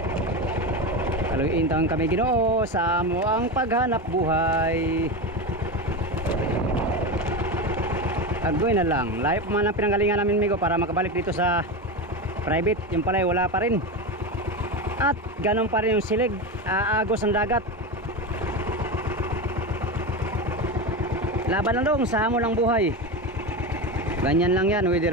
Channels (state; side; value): normal; both; correlation 0.19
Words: Kaluintang kami Ginoo sa amo ang paghanap buhay. Agoy na lang. Layo pa man ang pinanggalingan namin migo para makabalik dito sa private. Yung pala wala pa rin. At ganun pa rin yung silig. Aagos ang dagat. Laban lang dong sa amo ng buhay. Ganyan lang yan.